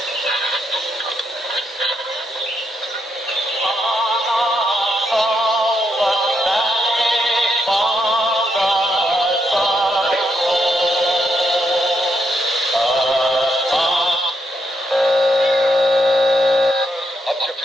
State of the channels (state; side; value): normal; both; correlation 0.79